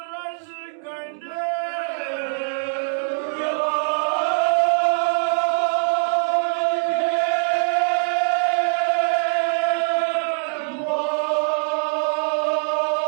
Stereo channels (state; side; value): silent; left; digital silence